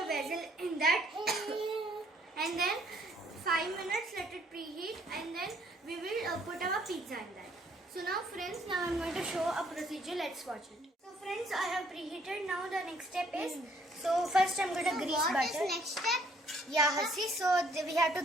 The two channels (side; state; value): both; normal; correlation 0.64